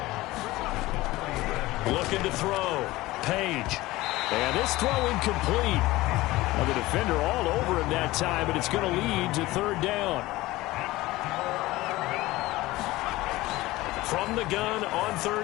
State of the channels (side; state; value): right; quieter; 18.6 dB